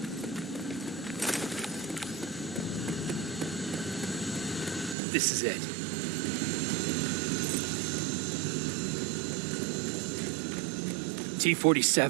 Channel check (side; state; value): left; drops out; at 5.0 s